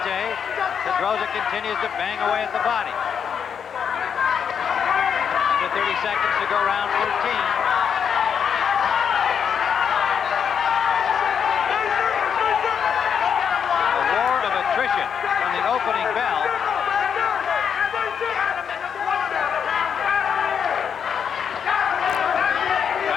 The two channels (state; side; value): quieter; right; 7.4 dB